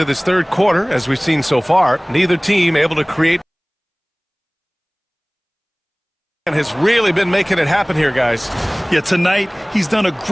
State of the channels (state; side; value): identical; both; correlation 1.00